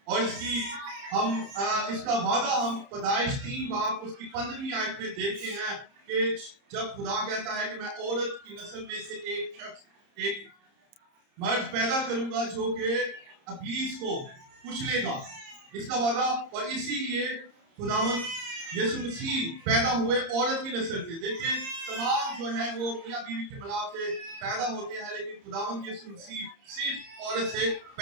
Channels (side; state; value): left; late; 30 ms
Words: اور اس کا وعدہ ہم پیدائش 3 باب اس کی 15ویں آیت میں دیکھتے ہیں کہ جب خدا کہتا ہے کہ میں عورت کی نسل میں سے ایک مرد پیدا کروں گا جو کہ ابلیس کو کچلے گا, اس کا وعدہ. اور اسی لیے خداوند یسوع مسیح پیدا ہوئے عورت کی نسل سے. دیکھیں تمام جو ہیں وہ میاں بیوی کے ملاپ سے پیدا ہوتے ہیں, لیکن خداوند یسوع مسیح صرف عورت سے